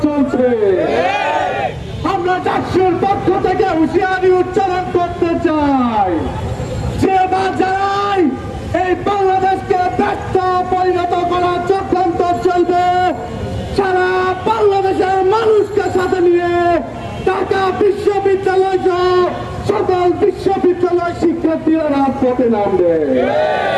চলছে। আমরা ডাকসুর পক্ষ থেকে হুঁশিয়ারি উচ্চারণ করতে চাই, যে বা যারাই এই বাংলাদেশকে ব্যর্থ পরিণত করার চক্রান্ত চলবে, সারা বাংলাদেশের মানুষকে সাথে নিয়ে ঢাকা বিশ্ববিদ্যালয় সহ সকল বিশ্ববিদ্যালয় শিক্ষার্থীরা রাজপথে নামবে।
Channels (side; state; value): both; identical; correlation 1.00